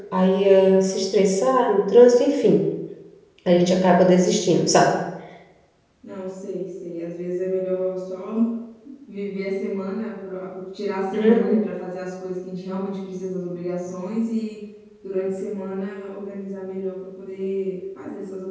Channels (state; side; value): identical; both; correlation 1.00